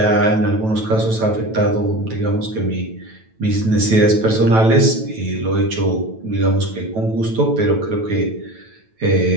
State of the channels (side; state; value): left; late; 9.1 ms